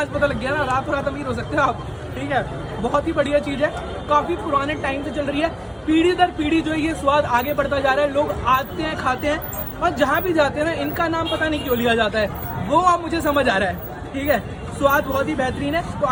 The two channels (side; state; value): both; identical; correlation 1.00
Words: पता लग गया ना, रात रात अमीर हो सकते हो आप। ठीक है, बहुत ही बढ़िया चीज़ है, काफ़ी पुराने टाइम से चल रही है, पीढ़ी दर पीढ़ी जो है ये स्वाद आगे बढ़ता जा रहा है, लोग आते हैं खाते हैं और जहाँ भी जाते हैं ना इनका नाम पता नहीं क्यों लिया जाता है, वो अब मुझे समझ आ रहा है। ठीक है, स्वाद बहुत ही बेहतरीन है, तो